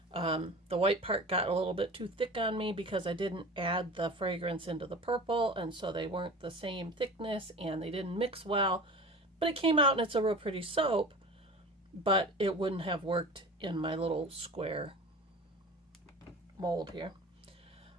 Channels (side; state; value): both; normal; correlation 0.36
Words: The white part got a little bit too thick on me because I didn't add the fragrance into the purple, and so they weren't the same thickness and they didn't mix well. But it came out and it's a real pretty soap, but it wouldn't have worked in my little square mold here.